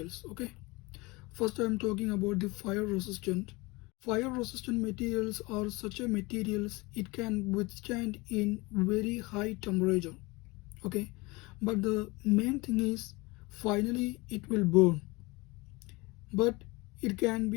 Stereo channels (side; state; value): right; quieter; 24.1 dB